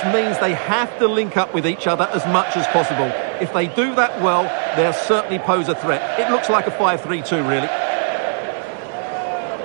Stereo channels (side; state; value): left; silent; digital silence